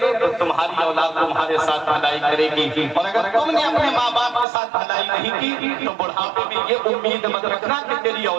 تو تمہاری اولاد تمہارے ساتھ بھلائی کرے گی, اور اگر تم نے اپنے ماں باپ کے ساتھ بھلائی نہیں کی تو بڑھاپے میں یہ امید مت رکھنا کہ تیری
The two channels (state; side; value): drops out; left; at 4.5 s